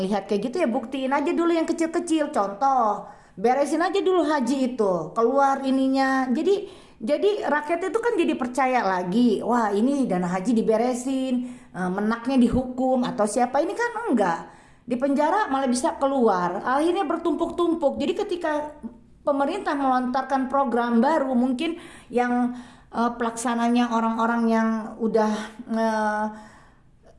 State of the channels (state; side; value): identical; both; correlation 1.00